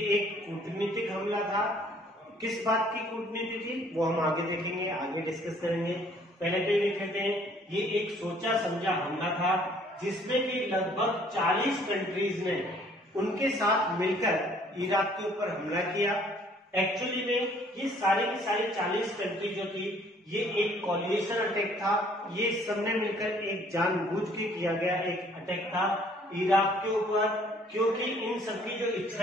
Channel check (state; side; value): normal; both; correlation 0.59